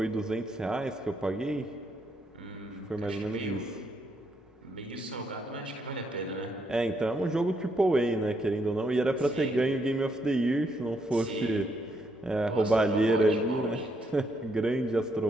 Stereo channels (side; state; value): both; normal; correlation 0.75